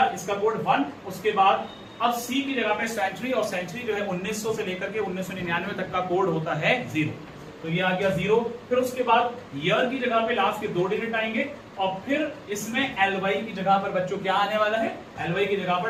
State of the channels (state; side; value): identical; both; correlation 1.00